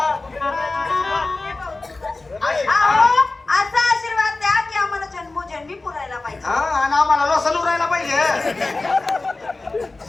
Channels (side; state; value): right; quieter; 3.3 dB